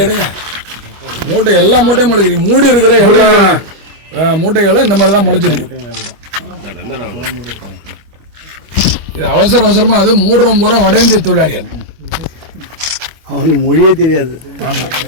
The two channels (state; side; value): late; left; 25 ms